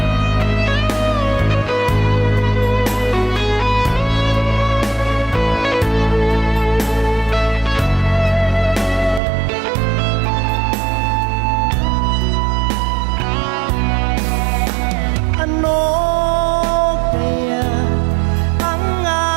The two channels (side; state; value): left; drops out; at 9.2 s